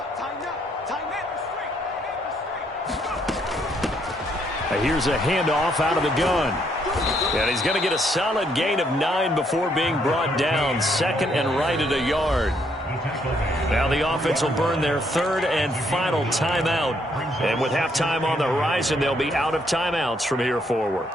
Here's a handoff out of the gun. And he's going to get a solid gain of 9 before being brought down. 2nd and right at a yard. Now the offense will burn their 3rd and final timeout. And with halftime on the horizon, they'll be out of timeouts from here forward.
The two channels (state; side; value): normal; both; correlation 0.71